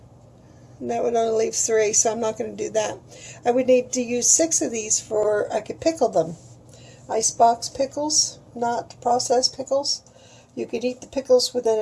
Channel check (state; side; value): identical; both; correlation 1.00